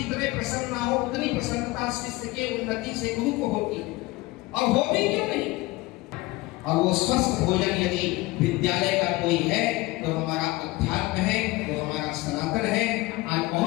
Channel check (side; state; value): right; quieter; 20.8 dB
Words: प्रसन्न ना हो उतनी प्रसन्नता शिष्य के उन्नति से गुरु को होगी, और हो भी क्यों नहीं। और वो स्वस्थ भोजन यदि विद्यालय का कोई है तो हमारा अध्यात्म है, वो हमारा सनातन है। आज